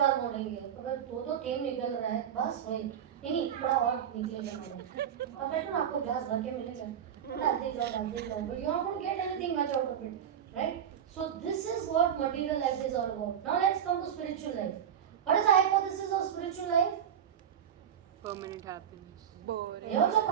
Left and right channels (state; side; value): quieter; left; 9.0 dB